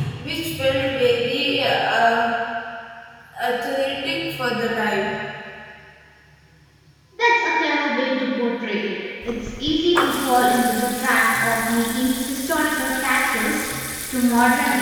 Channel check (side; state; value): both; identical; correlation 1.00